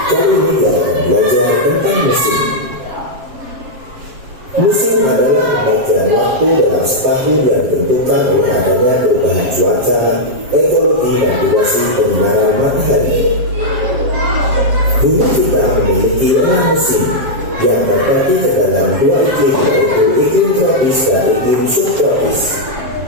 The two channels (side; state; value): left; late; 7.5 ms